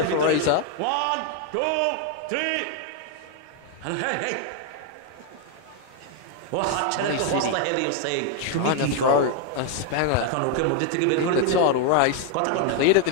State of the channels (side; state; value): both; different; correlation 0.00